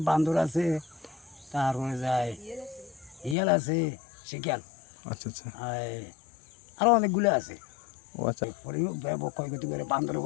বান্দর আছে, তারপরে যায় ইয়াল আছে, শিকাল, আচ্ছা আচ্ছা, আরো অনেকগুলো আছে। ও আচ্ছা, ক্ষয়ক্ষতি করে, বান্দরের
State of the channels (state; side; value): drops out; right; at 3.4 s